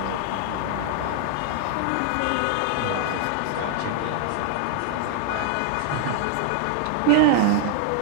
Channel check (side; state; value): both; different; correlation 0.00